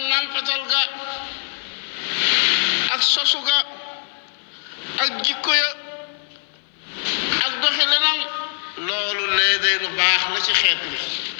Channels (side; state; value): right; silent; 56 dB below the other